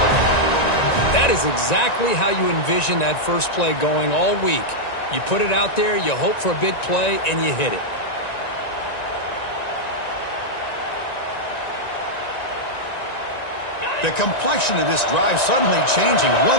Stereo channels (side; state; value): right; late; 1.9 ms